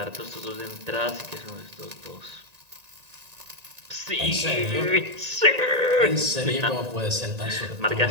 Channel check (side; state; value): left; late; 1.9 ms